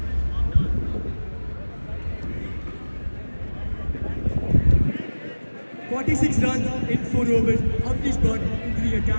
"46 runs in 4 overs. Avnish brought into the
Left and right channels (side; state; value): both; inverted; correlation -1.00